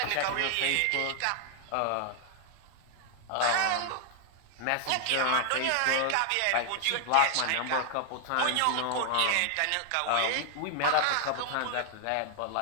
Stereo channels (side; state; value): both; different; correlation 0.00